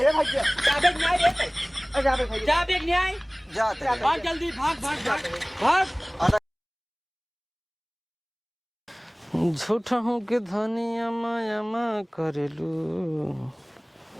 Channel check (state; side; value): identical; both; correlation 1.00